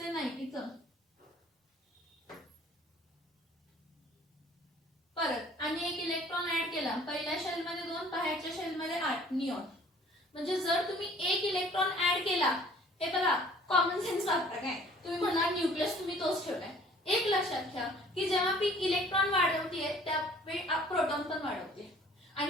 9 इथं. परत आणि एक इलेक्ट्रॉन ऍड केला पहिल्या शेल मध्ये 2 बाहेरच्या शेल मध्ये 8 निऑन. म्हणजे जर तुम्ही एक इलेक्ट्रॉन ऍड केला हे बघा कॉमन सेन्स वापरा काय तुम्ही म्हणा न्यूक्लियस तुम्ही तोच ठेवलाय. एक लक्षात घ्या की जेव्हा मी इलेक्ट्रॉन वाढवते त्यावेळी प्रोटॉन पण वाढवते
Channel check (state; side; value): normal; both; correlation 0.53